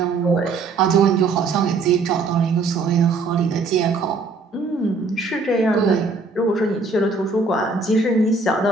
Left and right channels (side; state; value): left; quieter; 4.0 dB